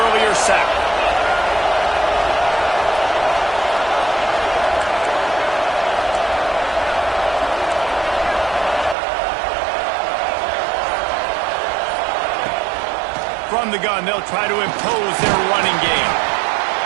sack. From the gun, they'll try to impose their running game.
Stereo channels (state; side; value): drops out; left; at 9.0 s